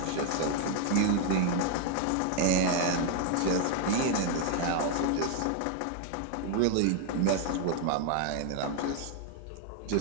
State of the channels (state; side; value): different; both; correlation 0.00